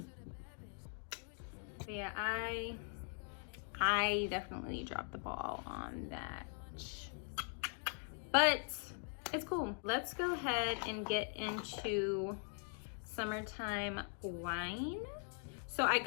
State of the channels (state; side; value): silent; right; 50 dB below the other